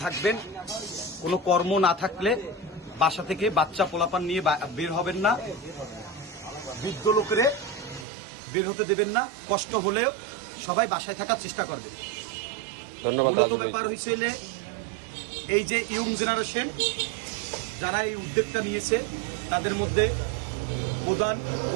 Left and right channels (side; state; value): left; drops out; at 8.1 s